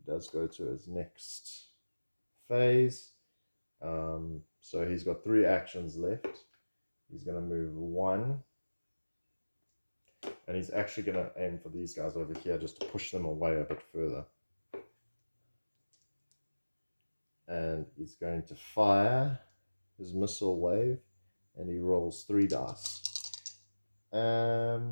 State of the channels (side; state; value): both; inverted; correlation -1.00